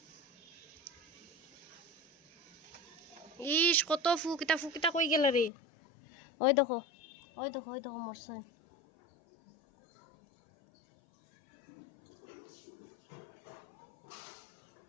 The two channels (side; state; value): right; drops out; at 5.5 s